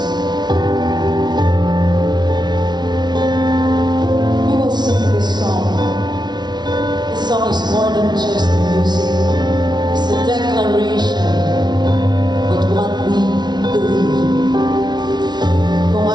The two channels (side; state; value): left; late; 0.20 ms